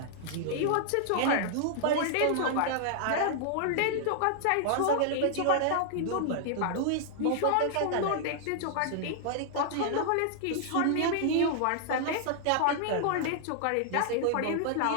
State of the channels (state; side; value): different; both; correlation -0.01